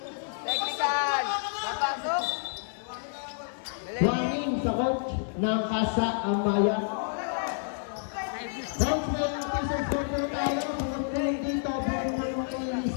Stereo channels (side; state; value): right; silent; digital silence